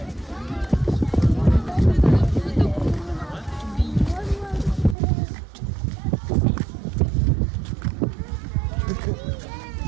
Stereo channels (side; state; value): left; drops out; at 5.0 s